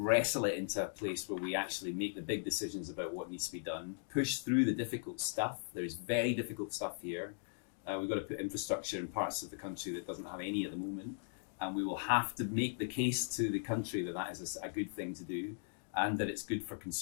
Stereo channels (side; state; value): right; silent; digital silence